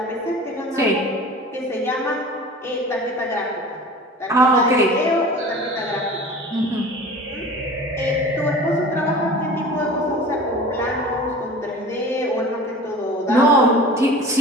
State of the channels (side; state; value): both; normal; correlation 0.39